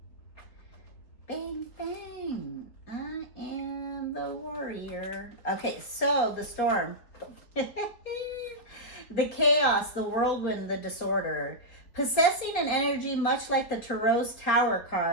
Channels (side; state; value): right; late; 4.4 ms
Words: Bang, bang. I am the Warrior. Okay, so the Storm. The chaos, the whirlwind, the disorder. Possessing an energy much like the Tarot's Tower